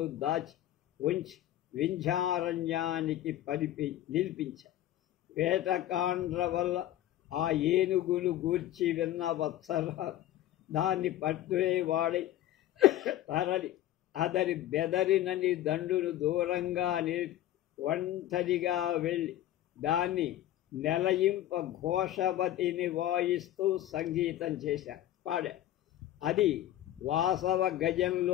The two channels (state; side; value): quieter; right; 13.2 dB